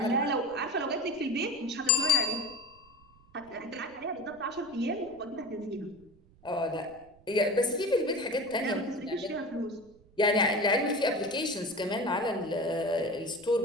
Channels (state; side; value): noise; right; rumble, 27 dB below the sound